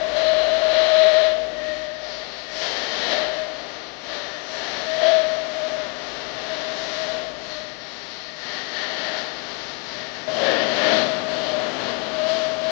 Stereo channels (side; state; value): right; quieter; 34.3 dB